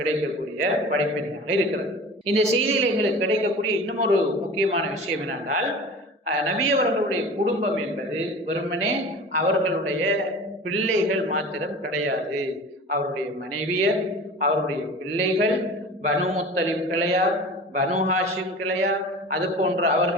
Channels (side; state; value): both; normal; correlation 0.38